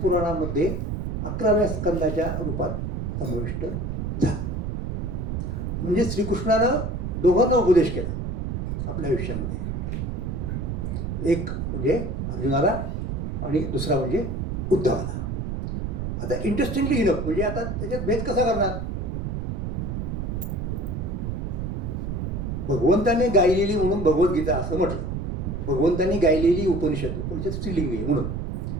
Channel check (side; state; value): right; noise; rumble, 3 dB below the sound